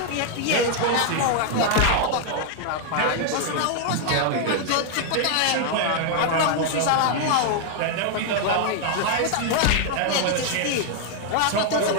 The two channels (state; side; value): different; both; correlation 0.00